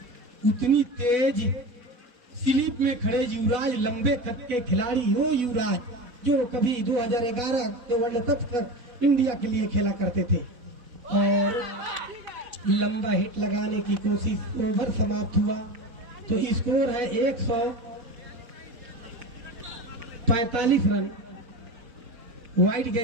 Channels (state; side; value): late; left; 4.5 ms